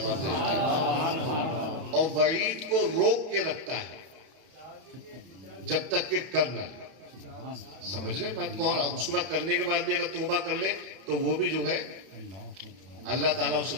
دے دیتا ہے. اور وعید کو روک کے رکھتا ہے جب تک کہ کر نہ لے. سمجھ رہے بات کو. اس کے بعد کرنے کے بعد بھی اگر توبہ کر لے تو وہ بھی جو ہے اللہ تعالیٰ اسے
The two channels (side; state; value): left; late; 31 ms